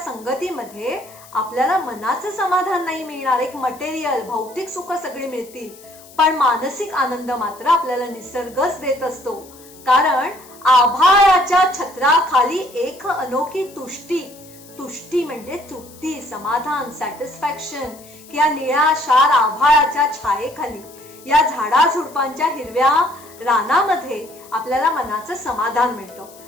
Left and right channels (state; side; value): noise; left; hiss, 22 dB below the sound